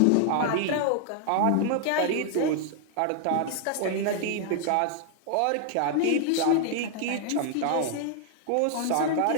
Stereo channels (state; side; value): different; both; correlation 0.00